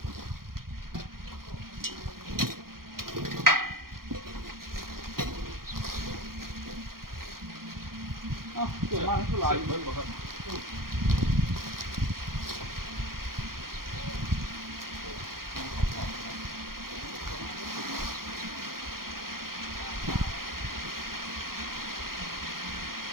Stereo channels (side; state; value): left; late; 0.92 ms